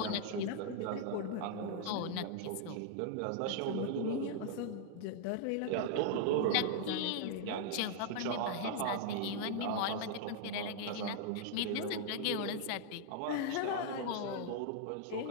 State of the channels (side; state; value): both; different; correlation 0.00